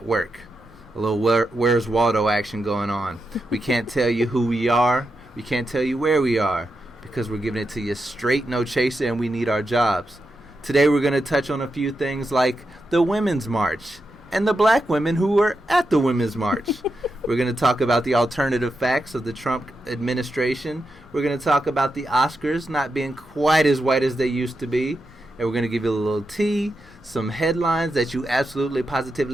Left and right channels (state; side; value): normal; both; correlation 0.87